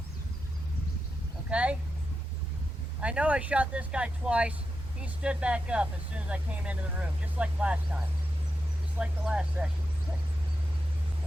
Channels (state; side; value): normal; both; correlation 0.88